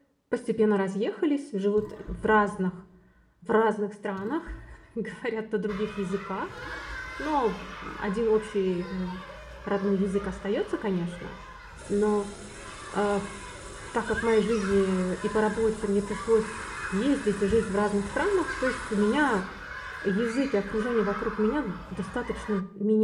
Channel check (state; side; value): identical; both; correlation 1.00